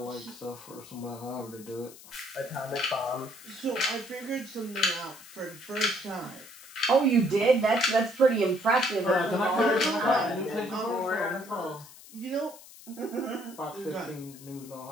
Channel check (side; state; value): left; noise; hiss, 19 dB below the sound